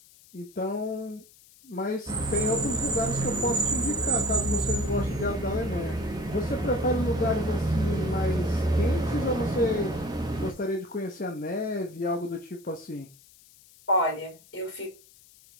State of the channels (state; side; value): noise; left; hiss, 25 dB below the sound